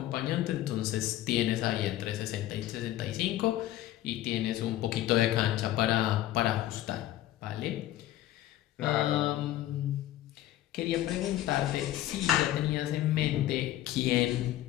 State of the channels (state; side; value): quieter; right; 14.0 dB